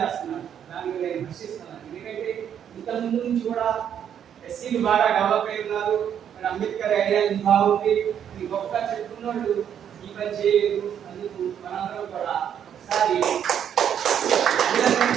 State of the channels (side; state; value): left; quieter; 9.0 dB